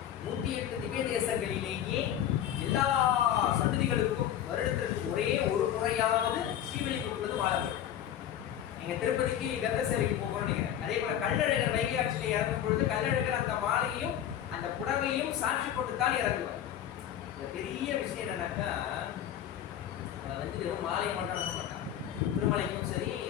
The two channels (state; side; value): quieter; right; 10.7 dB